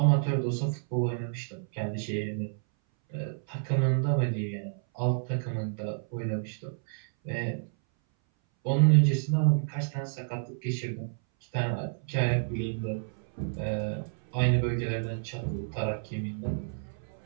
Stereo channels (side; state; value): left; silent; 58 dB below the other